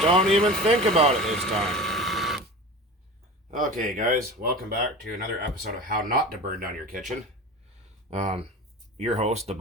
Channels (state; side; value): normal; both; correlation 0.33